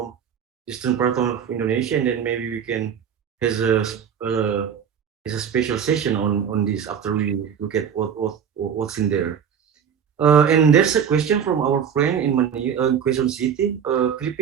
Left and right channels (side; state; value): left; quieter; 7.9 dB